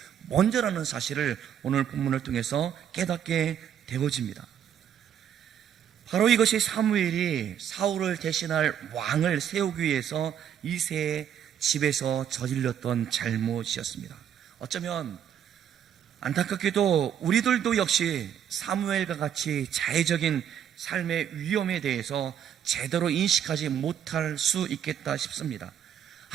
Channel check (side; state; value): left; quieter; 9.3 dB